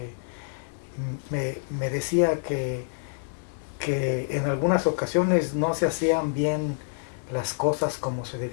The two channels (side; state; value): right; silent; digital silence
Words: me decía que en algunas ocasiones no se hacían bien las cosas como se